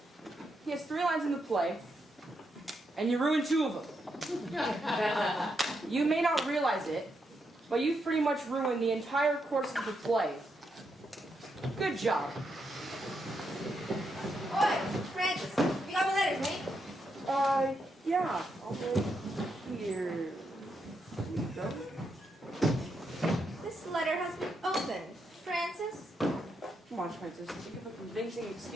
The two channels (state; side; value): normal; both; correlation 0.81